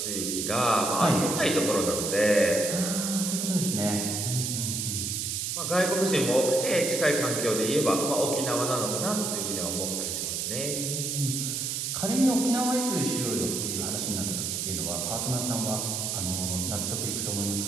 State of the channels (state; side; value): noise; right; hiss, 2 dB below the sound